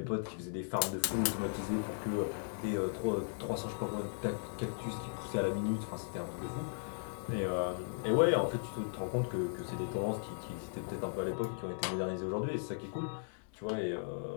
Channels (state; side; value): silent; right; digital silence